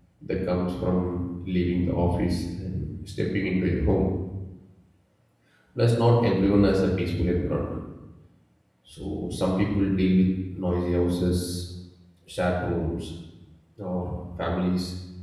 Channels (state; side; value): identical; both; correlation 1.00